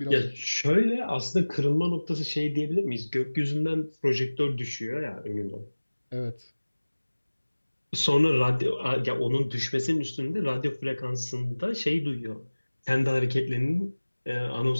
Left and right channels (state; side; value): inverted; both; correlation -1.00